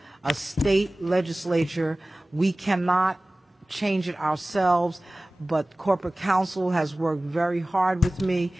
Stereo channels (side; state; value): both; normal; correlation 0.98